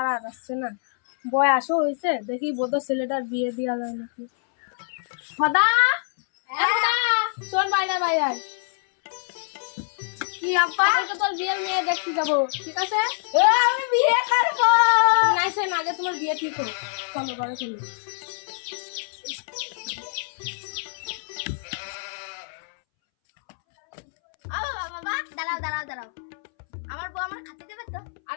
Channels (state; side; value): silent; right; 62 dB below the other